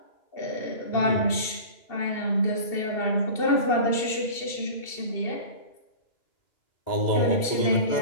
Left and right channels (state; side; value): late; right; 2.7 ms